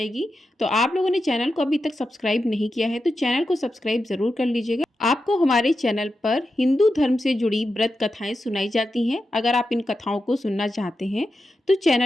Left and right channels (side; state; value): both; normal; correlation 0.89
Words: तो आप लोगों ने चैनल को अभी तक सब्सक्राइब नहीं किया है तो चैनल को सब्सक्राइब ज़रूर कर लीजिएगा। आपको हमारे चैनल पर हिंदू धर्म से जुड़ी व्रत कथाएं सुनाई जाती हैं। अगर आप इन कथाओं को सुनना चाहते हैं तो